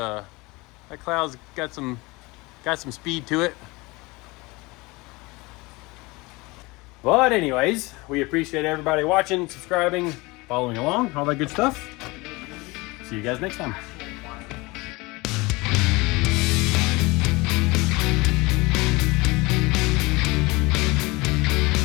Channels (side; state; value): right; quieter; 23.8 dB